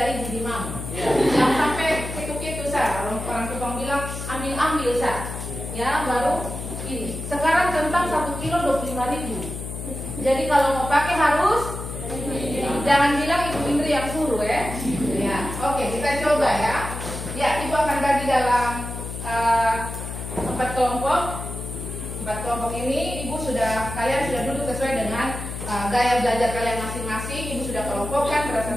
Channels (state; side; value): noise; left; hum, 7 dB below the sound